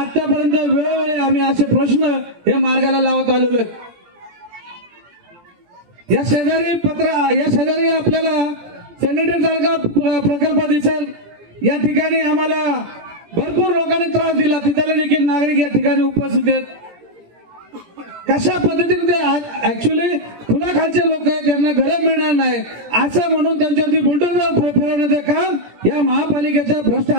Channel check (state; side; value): late; left; 17 ms